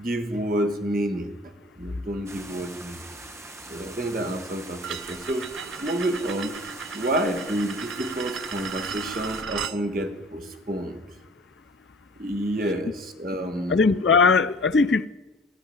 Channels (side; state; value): both; normal; correlation 0.46